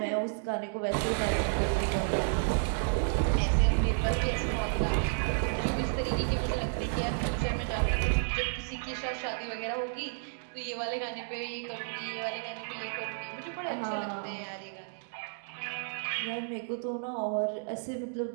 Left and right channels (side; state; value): left; silent; digital silence